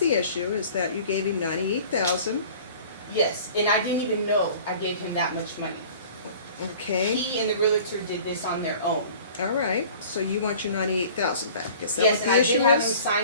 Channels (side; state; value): both; inverted; correlation -0.46